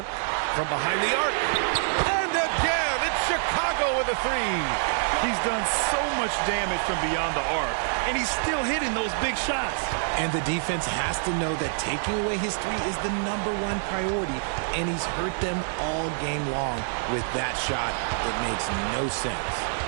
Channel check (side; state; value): left; silent; 58 dB below the other